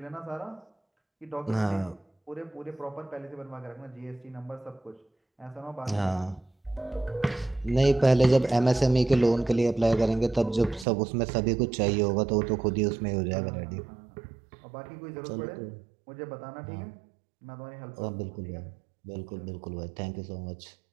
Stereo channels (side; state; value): left; drops out; at 10.9 s